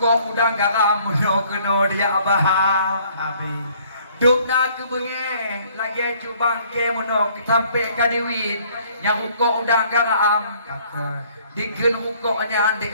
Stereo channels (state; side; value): inverted; both; correlation -0.60